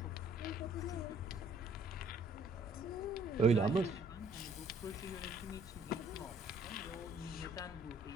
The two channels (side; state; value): both; normal; correlation 0.61